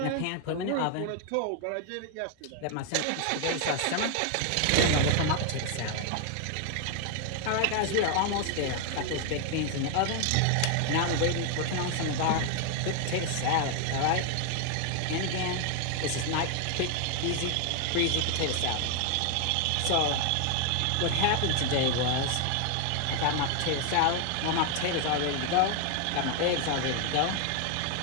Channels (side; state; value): both; different; correlation 0.01